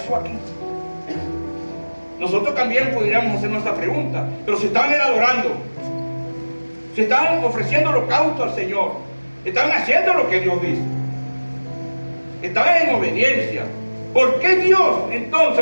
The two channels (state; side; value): inverted; both; correlation -1.00